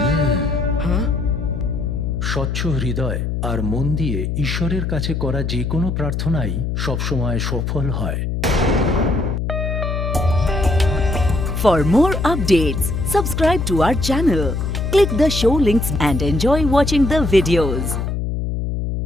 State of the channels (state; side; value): noise; left; hum, 2 dB below the sound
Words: স্বচ্ছ হৃদয় আর মন দিয়ে ঈশ্বরের কাছে করা যে কোনো প্রার্থনাই সবসময় সফল হয়। For more updates, subscribe to our channel, click the show links and enjoy watching the videos.